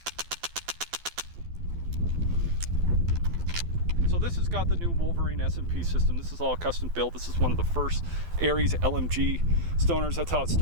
So this has got the new Wolverine S&P system. This is all custom built. This is one of the first Aries LMG stoners. That's how it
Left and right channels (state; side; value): late; left; 12 ms